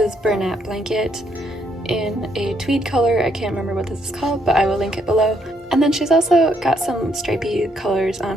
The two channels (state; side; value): normal; both; correlation 0.73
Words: Bernat Blanket in a tweed color. I can't remember what this is called, but I will link it below. And then she's also got some stripy colors on